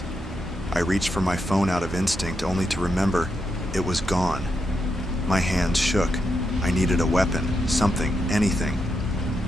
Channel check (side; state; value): both; normal; correlation 0.83